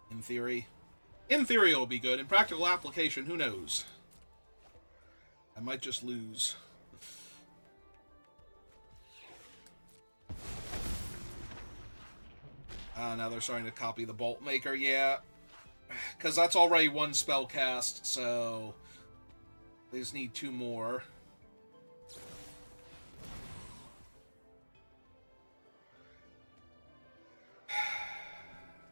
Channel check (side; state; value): both; inverted; correlation -1.00